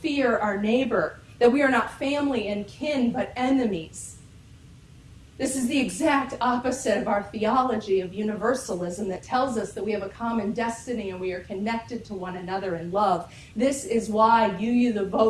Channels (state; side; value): identical; both; correlation 1.00